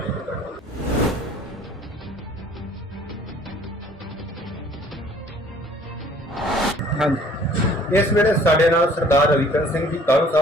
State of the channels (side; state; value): both; normal; correlation 0.55